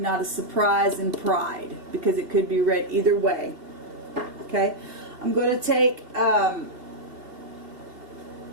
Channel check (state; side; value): late; left; 2.7 ms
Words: a surprise and pride. Because it could be read either way. Okay? I'm going to take... I'm